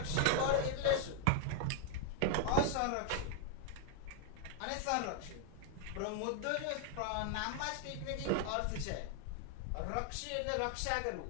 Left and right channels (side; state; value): both; different; correlation 0.00